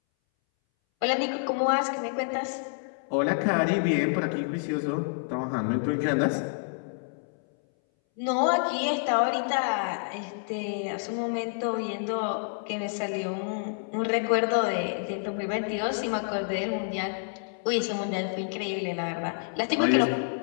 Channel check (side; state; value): right; silent; 59 dB below the other